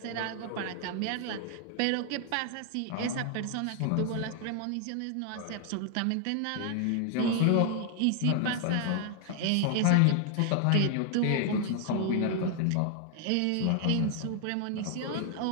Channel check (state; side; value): different; both; correlation 0.00